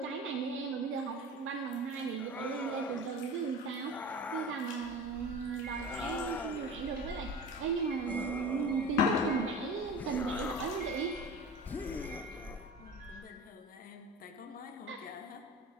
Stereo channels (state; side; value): normal; both; correlation 0.34